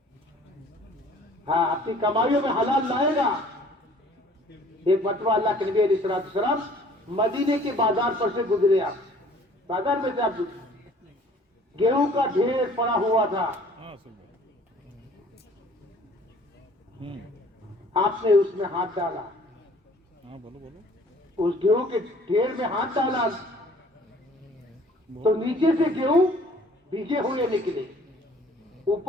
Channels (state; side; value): normal; both; correlation 0.54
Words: ہاں اپنی کمائیوں میں حلال لائے گا. ایک مرتبہ اللہ کے نبی علیہ السلام مدینے کے بازار پر سے گزرے. آپ بازار میں سے آپ گیہوں کا ڈھیر پڑا ہوا تھا. آپ نے اس میں ہاتھ ڈالا, اس گیہوں کے ڈھیر میں ہاتھ ڈالا تو نیچے سے گیہوں بھیگے ہوئے نکلے,